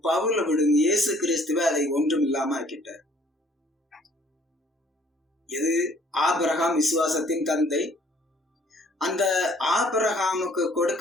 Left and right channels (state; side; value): normal; both; correlation 0.60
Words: பவுல விடுங்க இயேசு கிறிஸ்துவ அதை ஒன்றும் இல்லாம ஆக்கிட்டார். எது? ஆபிரகாம் விசுவாசத்தின் தந்தை. அந்த ஆபிரகாமுக்கு